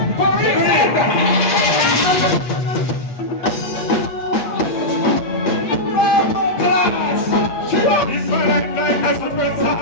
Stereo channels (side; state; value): right; late; 8.6 ms